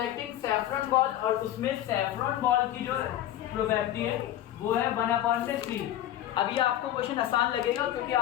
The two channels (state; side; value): quieter; right; 12.6 dB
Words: saffron ball, और उसमें सैफरॉन बॉल की जो प्रोबेबिलिटी है वो है 1/3। अभी आपको क्वेश्चन आसान लगेगा क्योंकि